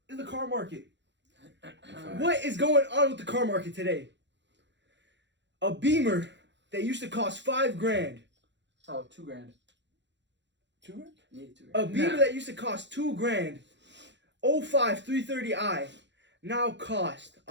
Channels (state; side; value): late; left; 0.52 ms